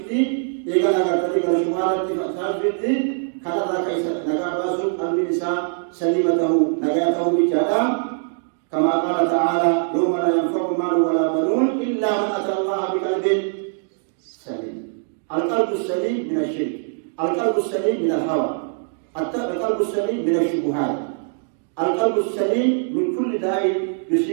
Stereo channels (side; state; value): left; silent; digital silence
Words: إذا أجر شمالات في سهل كفتي كذا كيس نجا باسو قلب الإنسان سليمته نجاته بجادا، كما قال تعالى: يوم لا ينفع مال ولا بنون إلا من أتى الله بقلب سليم. القلب السليم من الشرك، القلب السليم من الهوى، القلب السليم من الشبهات، القلب السليم من كل داء